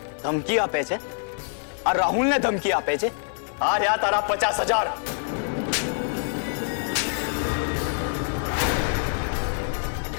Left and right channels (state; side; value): silent; right; digital silence